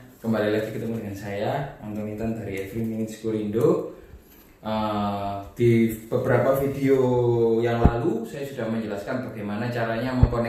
kembali lagi ketemu dengan saya Anton Intan dari Every Minute Indo. Di beberapa video yang lalu saya sudah menjelaskan bagaimana caranya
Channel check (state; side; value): identical; both; correlation 1.00